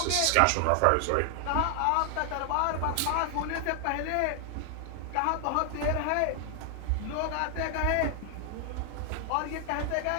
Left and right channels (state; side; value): different; both; correlation 0.00